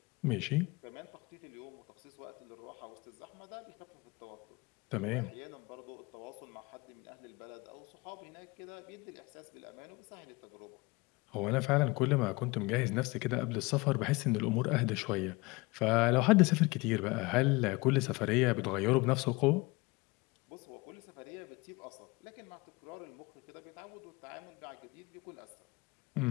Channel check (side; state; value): right; quieter; 24.5 dB